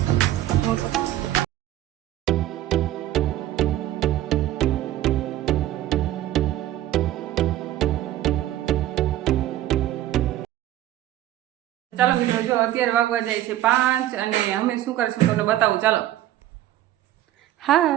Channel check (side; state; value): left; quieter; 13.7 dB